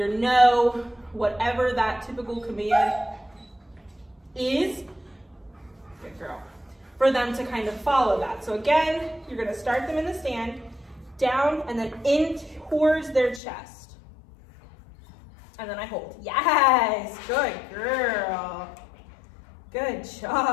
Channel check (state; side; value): drops out; right; at 13.4 s